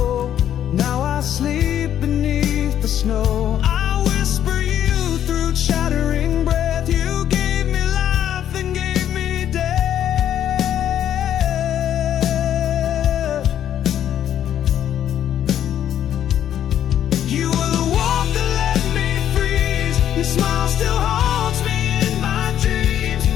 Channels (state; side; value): quieter; right; 10.5 dB